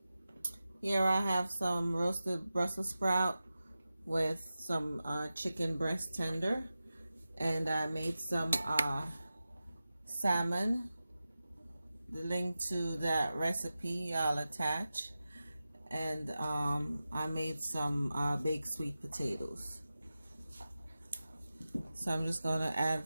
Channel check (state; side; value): inverted; both; correlation -0.94